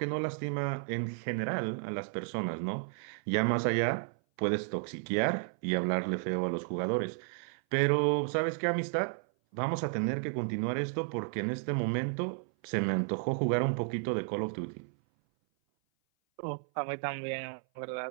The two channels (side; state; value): left; silent; 56 dB below the other